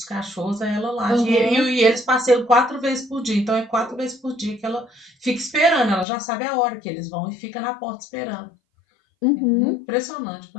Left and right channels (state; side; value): drops out; right; at 6.1 s